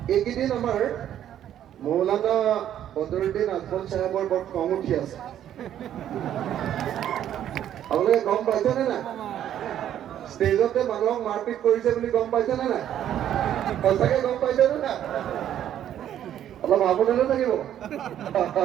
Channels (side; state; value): left; quieter; 10.8 dB